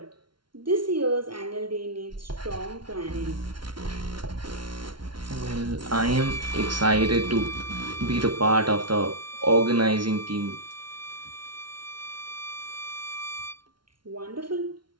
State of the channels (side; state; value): left; late; 0.73 ms